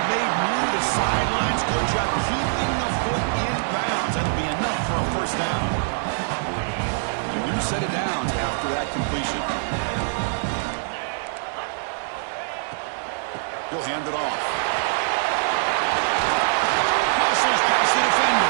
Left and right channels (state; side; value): silent; left; digital silence